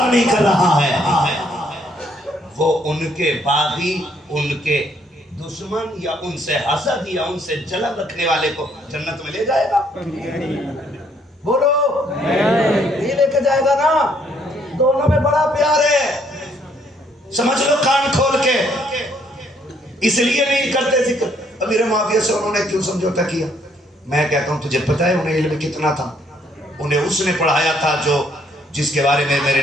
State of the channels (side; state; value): both; normal; correlation 0.68